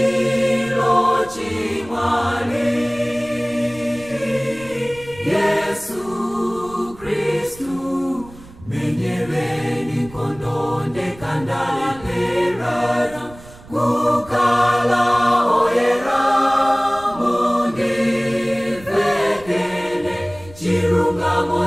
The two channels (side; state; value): right; noise; rumble, 20 dB below the sound